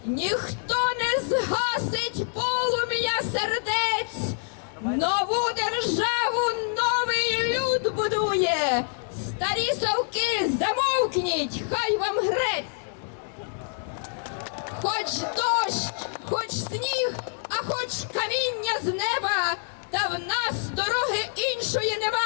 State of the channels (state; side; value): silent; right; 61 dB below the other